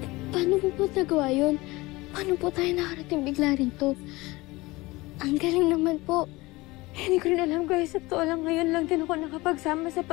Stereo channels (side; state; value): right; quieter; 21.4 dB